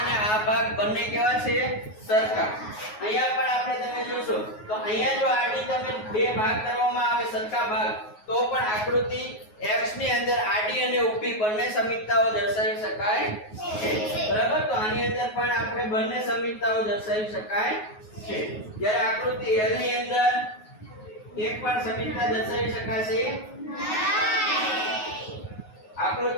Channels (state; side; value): late; right; 9.4 ms